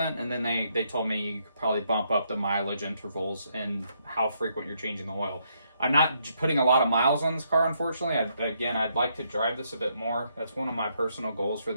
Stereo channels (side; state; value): both; inverted; correlation -0.75